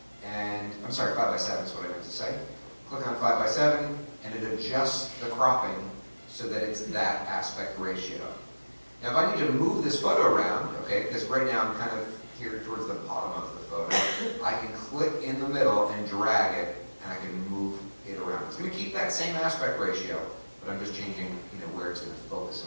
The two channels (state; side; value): inverted; both; correlation -1.00